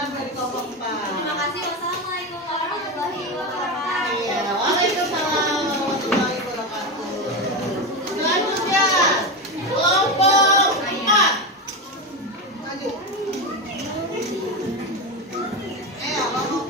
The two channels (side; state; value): both; normal; correlation 0.17